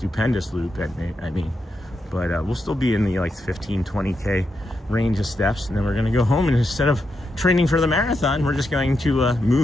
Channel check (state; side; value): normal; both; correlation 0.84